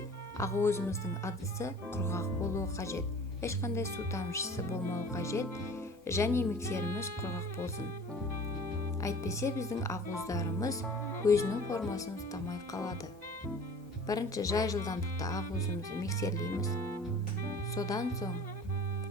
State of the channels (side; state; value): both; normal; correlation 0.44